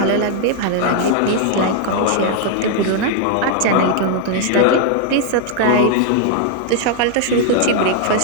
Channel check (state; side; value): different; both; correlation 0.00